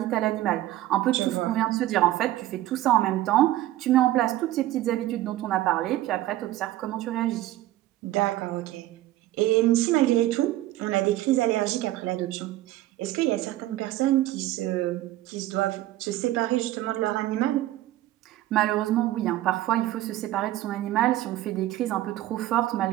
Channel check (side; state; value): left; quieter; 15.1 dB